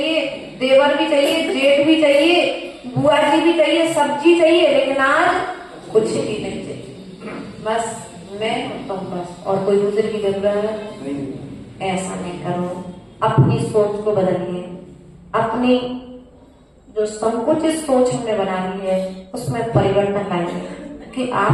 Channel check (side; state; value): both; identical; correlation 1.00